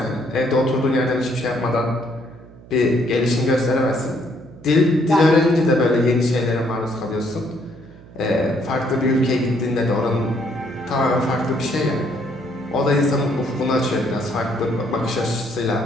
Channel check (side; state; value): right; noise; hum, 21 dB below the sound